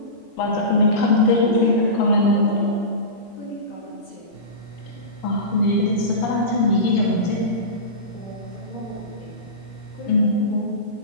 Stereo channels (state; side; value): late; right; 21 ms